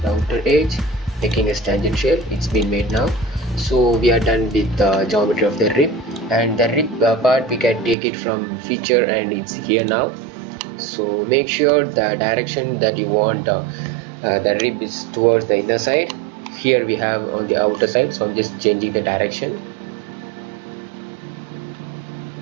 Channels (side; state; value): left; drops out; at 8.0 s